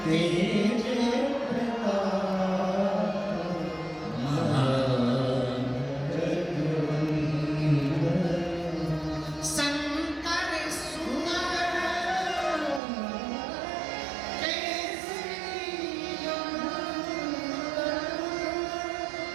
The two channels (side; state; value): left; drops out; at 12.8 s